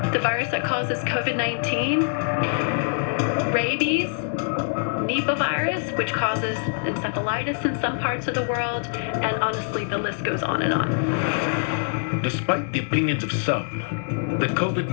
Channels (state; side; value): silent; right; digital silence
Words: the virus that causes COVID-19, rabies, Nipah virus, which causes encephalitis in some parts of the world, and honestly, the list goes on and on. Despite the opinions of some, the